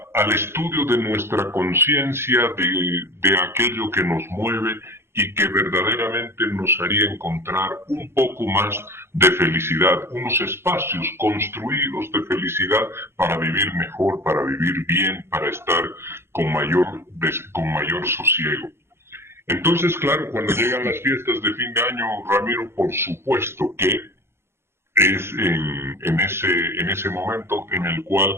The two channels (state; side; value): late; left; 0.12 ms